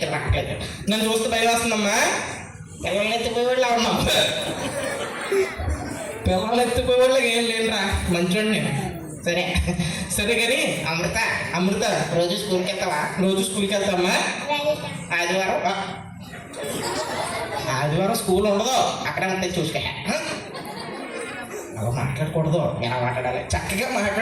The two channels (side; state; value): both; identical; correlation 1.00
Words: రావట్లేదు. నన్ను చూస్తే భయం వేస్తుందమ్మా. పిల్లల్ని ఎత్తిపోయి వాళ్ళు ఉన్నాం. పిల్లలు ఎత్తిపోయే వాళ్ళకి ఏం లేదురా, మంచోడిని. సరే సరే కానీ అమృత, అమృత రోజు స్కూల్కి వెళ్తావా? రోజు స్కూల్కి వెళ్తామ్మా. ఆదివారం ఆదివారం స్కూల్ ఉండదు, అక్కడ ఉంటే చూసుకో. అలా మాట్లాడకూడదు, ఎలా మాట్లాడాలి? చక్కగా